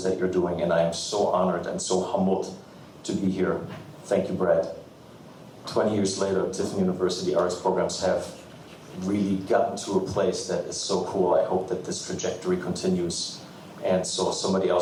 that you're doing, and I am so honored and so humbled to be here. Thank you, Brad. 20 years later, Tiffin University arts programs have really gotten to a place that is so cool. I hope that this trajectory continues. And so somebody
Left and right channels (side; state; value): both; identical; correlation 1.00